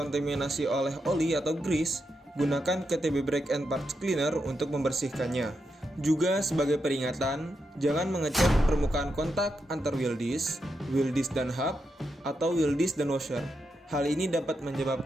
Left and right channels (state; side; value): normal; both; correlation 0.85